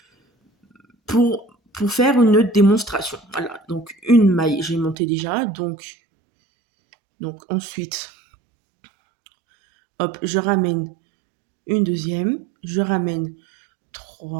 pour faire une démonstration. Voilà, donc une maille, j'ai monté déjà, donc ensuite, hop, je ramène une deuxième, je ramène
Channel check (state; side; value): drops out; left; at 5.0 s